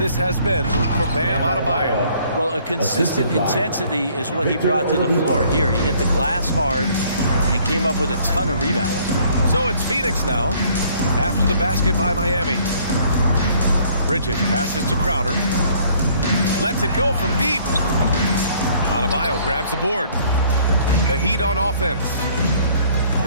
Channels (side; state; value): both; inverted; correlation -0.60